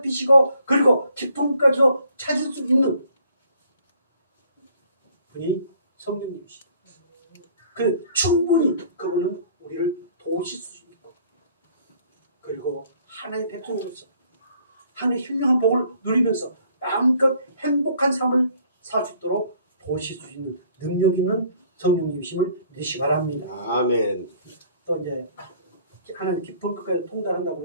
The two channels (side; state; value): both; inverted; correlation -0.59